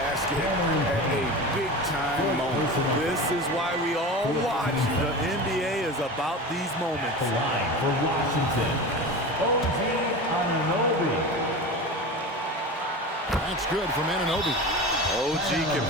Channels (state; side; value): normal; both; correlation 0.29